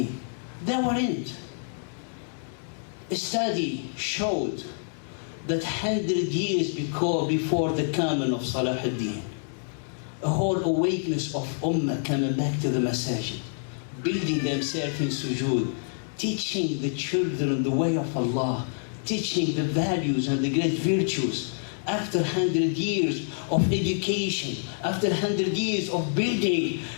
They weren't. A study showed that 100 years before the coming of Salahuddin, a whole awakeness of ummah coming back to the masajid, building themselves in sujood, teaching the children the way of Allah, teaching the values and the great virtues. After 100 years of education, after 100 years of building,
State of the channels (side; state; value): right; silent; digital silence